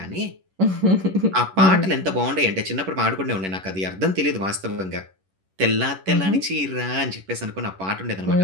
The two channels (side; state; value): left; late; 11 ms